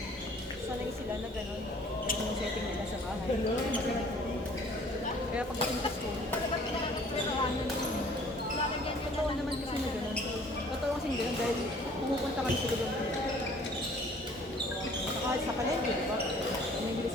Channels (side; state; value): both; normal; correlation 0.54